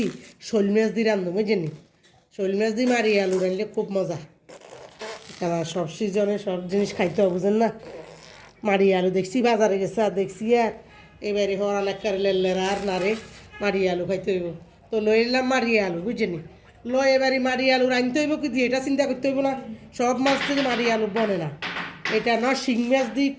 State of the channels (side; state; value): both; identical; correlation 1.00